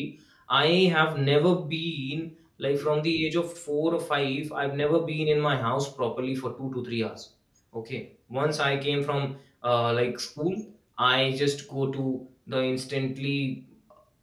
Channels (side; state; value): both; identical; correlation 1.00